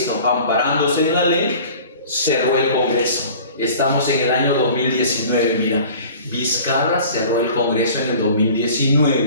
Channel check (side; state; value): both; inverted; correlation -0.44